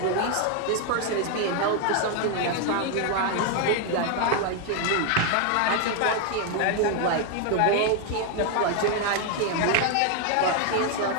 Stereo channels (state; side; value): different; both; correlation 0.01